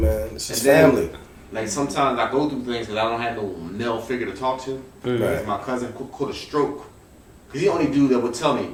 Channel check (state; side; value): identical; both; correlation 1.00